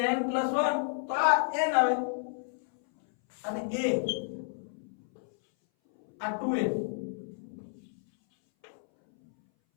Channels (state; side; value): silent; right; 57 dB below the other